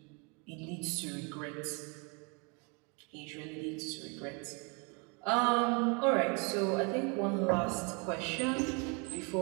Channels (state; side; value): quieter; left; 33.3 dB